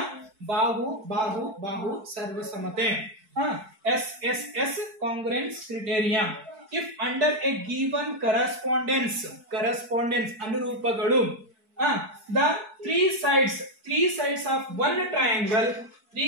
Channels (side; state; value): left; late; 4.6 ms